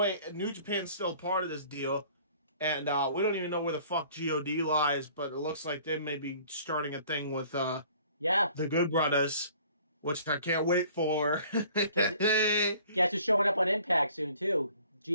New Japan's still part of this deal, and we don't even know where the fuck God lies, but it looks like they may be starting a thing with the Good Brothers, which I can't wait for. Guess who's showing up on Impact soon too?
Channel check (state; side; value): inverted; both; correlation -0.53